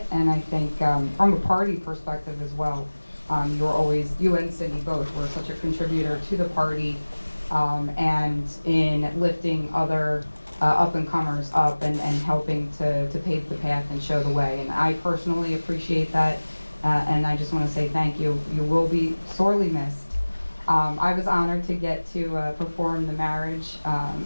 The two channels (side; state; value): both; inverted; correlation -1.00